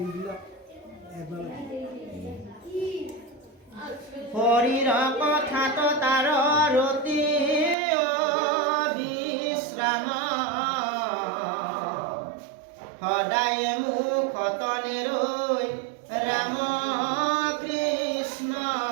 এবাৰ হৰিৰ কথাত তাৰ ৰতি বিশ্ৰাম সদায় মুখত নেৰৈ ৰাম কৃষ্ণ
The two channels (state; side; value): drops out; left; at 7.8 s